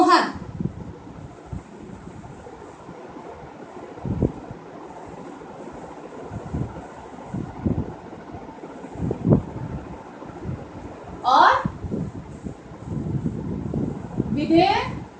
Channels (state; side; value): identical; both; correlation 1.00